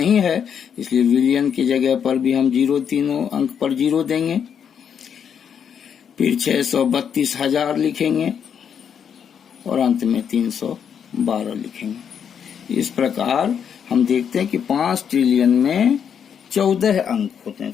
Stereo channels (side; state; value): right; quieter; 7.8 dB